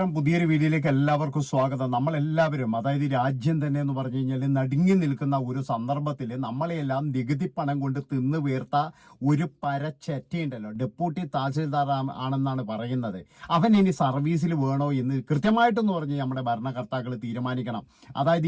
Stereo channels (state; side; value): identical; both; correlation 1.00